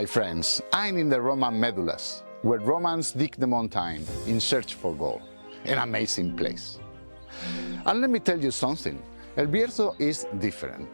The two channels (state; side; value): inverted; both; correlation -1.00